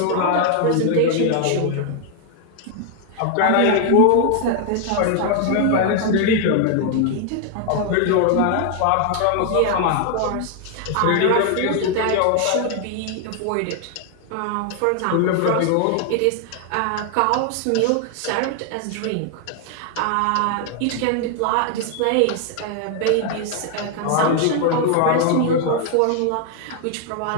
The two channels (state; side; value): different; both; correlation 0.00